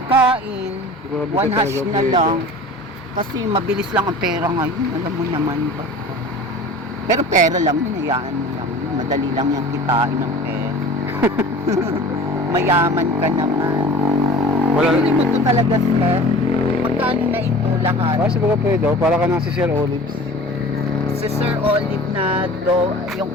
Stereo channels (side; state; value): both; normal; correlation 0.41